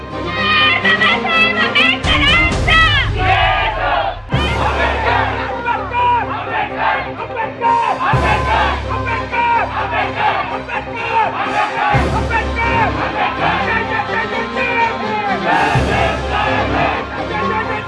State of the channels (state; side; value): identical; both; correlation 1.00